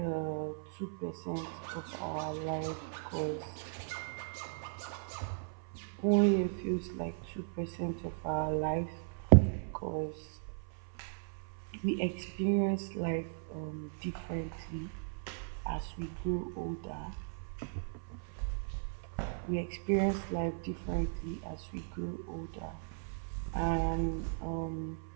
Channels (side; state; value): left; silent; 53 dB below the other